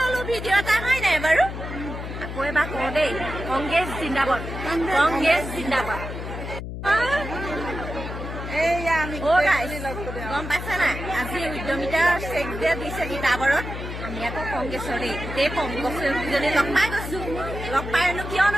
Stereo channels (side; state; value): left; noise; hum, 7 dB below the sound